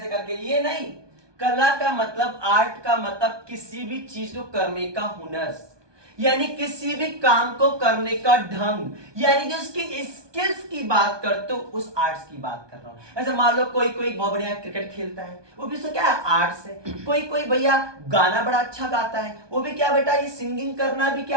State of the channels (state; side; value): late; left; 1.2 ms